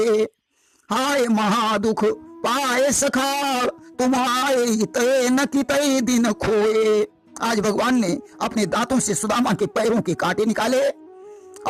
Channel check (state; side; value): identical; both; correlation 1.00